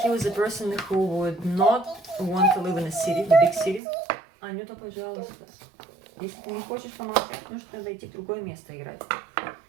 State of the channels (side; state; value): left; drops out; at 3.8 s